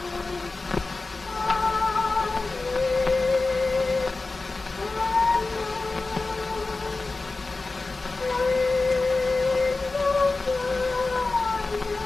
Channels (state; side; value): quieter; right; 3.5 dB